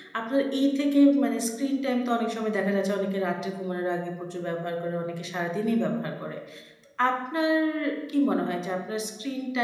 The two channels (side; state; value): both; identical; correlation 1.00